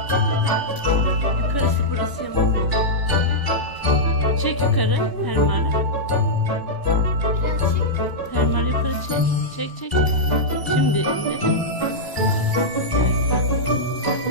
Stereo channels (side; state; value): right; late; 1.0 ms